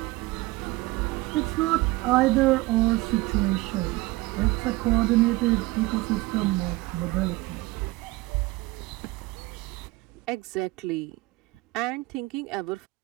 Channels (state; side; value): quieter; left; 20.5 dB